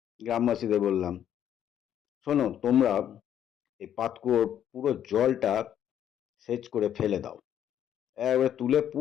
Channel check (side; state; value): right; quieter; 10.1 dB